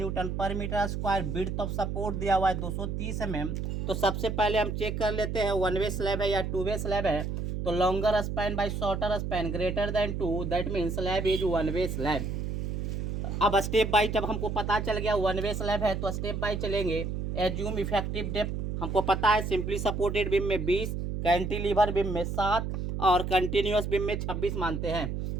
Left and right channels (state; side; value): noise; right; hum, 3 dB below the sound